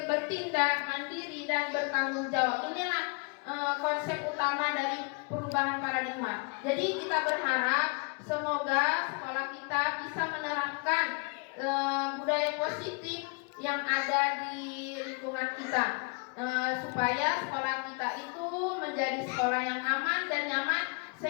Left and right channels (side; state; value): right; quieter; 33.5 dB